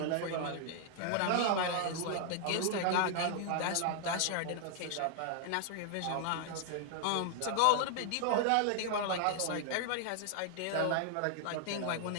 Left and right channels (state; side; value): different; both; correlation 0.00